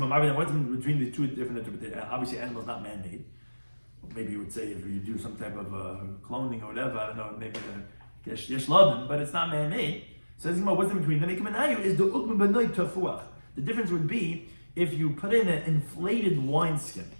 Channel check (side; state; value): both; inverted; correlation -1.00